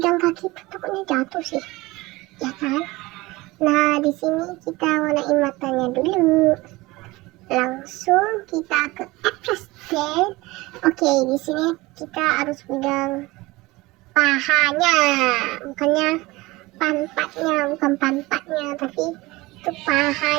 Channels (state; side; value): quieter; left; 21.0 dB